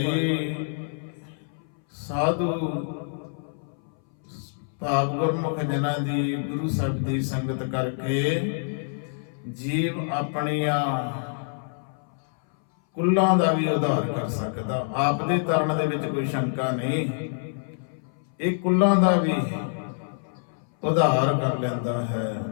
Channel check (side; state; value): right; silent; 60 dB below the other